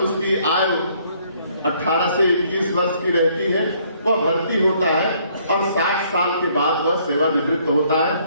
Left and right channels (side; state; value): both; inverted; correlation -0.65